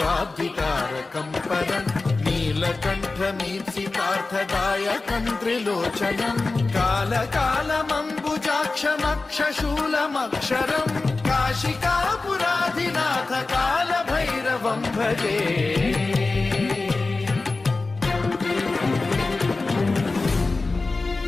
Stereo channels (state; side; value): quieter; right; 3.6 dB